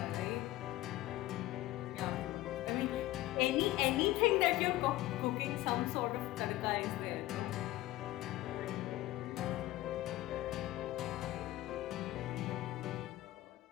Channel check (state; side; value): quieter; right; 16.7 dB